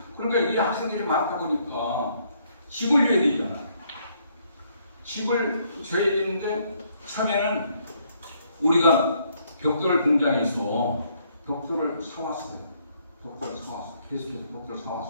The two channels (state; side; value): inverted; both; correlation -0.69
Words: 그러니까 이 학생들이 많다 보니까 집을 줘야 되잖아. 집을 줘야 되는데 처음에는 우리가 벽돌 공장에서 벽돌을 사왔어요. 계속해서 벽돌을